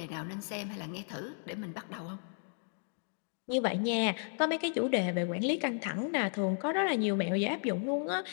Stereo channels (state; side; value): silent; right; 55 dB below the other